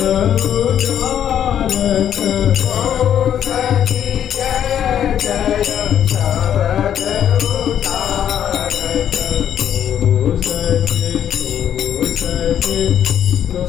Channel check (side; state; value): right; quieter; 9.8 dB